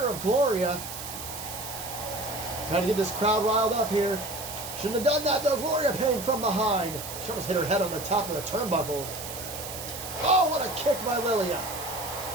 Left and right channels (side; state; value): right; noise; hiss, 9 dB below the sound